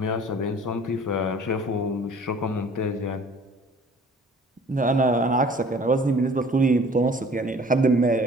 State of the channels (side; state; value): both; normal; correlation 0.51